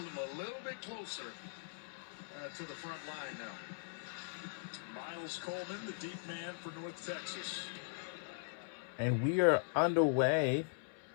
them a little bit closer to the front line now. Miles Coleman, the deep man for North Texas. And we are underway.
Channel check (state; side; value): silent; right; 51 dB below the other